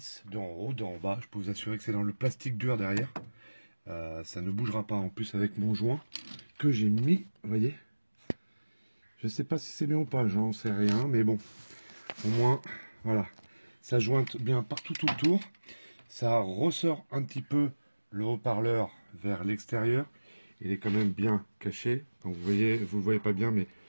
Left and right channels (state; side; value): inverted; both; correlation -1.00